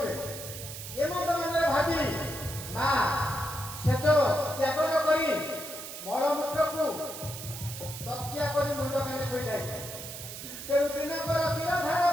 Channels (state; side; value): noise; right; hiss, 10 dB below the sound